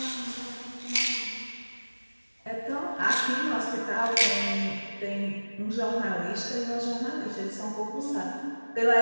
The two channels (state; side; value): inverted; both; correlation -1.00